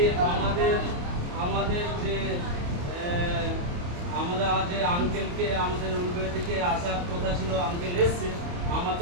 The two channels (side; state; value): left; late; 28 ms